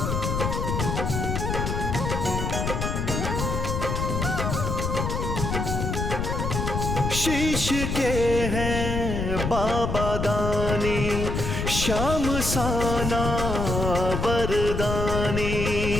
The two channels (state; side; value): noise; left; rumble, 2 dB below the sound